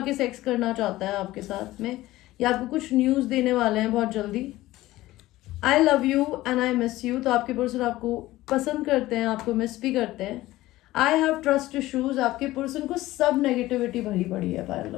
के सेक्स करना चाहता है आपके साथ में, या आपको कुछ न्यूज़ देने वाले हैं बहुत जल्दी। आई love you and I miss you, तो आपके पर्सन आपको पसंद करते हैं, आपको मिस भी करते हैं। आई हैव ट्रस्ट इशूज, आपके पर्सन को सब नेगेटिविटी भरी पड़ी है। पाइल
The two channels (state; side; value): quieter; right; 16.9 dB